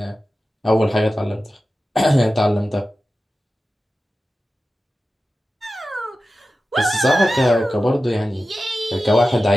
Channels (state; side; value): normal; both; correlation 0.94